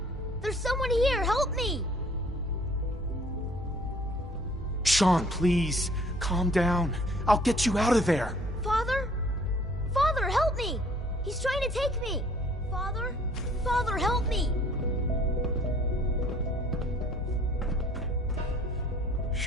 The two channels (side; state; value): both; normal; correlation 0.57